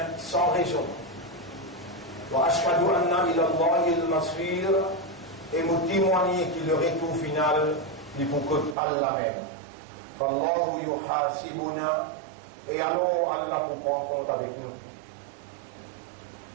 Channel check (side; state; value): left; drops out; at 8.8 s